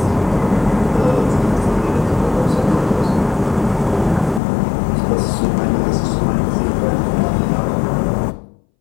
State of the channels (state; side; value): drops out; right; at 4.4 s